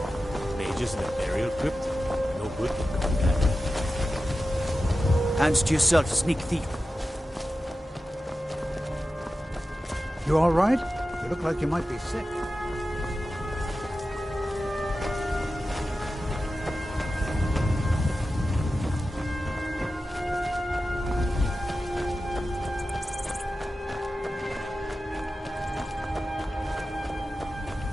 Mages in a burial crypt? No good can come of that. Hands to yourself, sneak thief. You all right? You look like you might be sick.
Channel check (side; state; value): both; normal; correlation 0.93